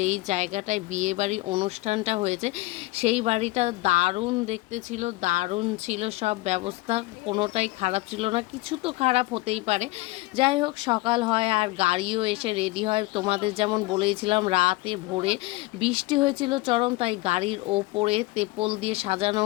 জায়গাটায় বিয়ে বাড়ির অনুষ্ঠানটা হয়েছে সেই বাড়িটা দারুণ দেখতে ছিল, দারুণ ছিল সব ব্যবস্থা, কোনোটাই খারাপ ছিল না। কিছু তো খারাপ হতেই পারে, যাই হোক সকাল হয় আর গাড়িও এসে রেডি হয়। তোমাদের যেমন বলেছিলাম, রাতে ভোরে বৃষ্টি হয়েছিল চরম, তাই গাড়ির ওপরে তেপল দিয়ে সাজানো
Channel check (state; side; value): quieter; right; 20.6 dB